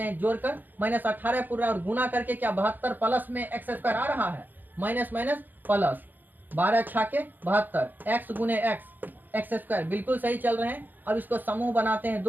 हैं, जोड़कर माइनस 18 पूरा और गुना करके क्या 72 प्लस में एक्स स्क्वायर आ रहा है, माइनस माइनस प्लस 12 छाके 72 एक्स गुने एक्स स्क्वायर, बिल्कुल सही चल रहे हैं। अब इसको समूह बनाते हैं,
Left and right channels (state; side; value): late; left; 0.086 ms